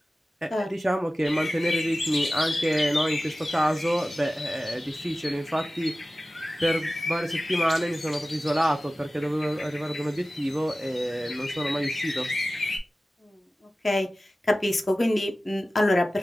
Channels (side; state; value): both; normal; correlation 0.96